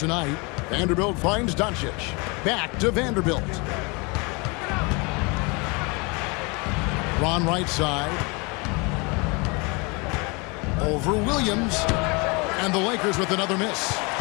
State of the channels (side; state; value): right; quieter; 29.1 dB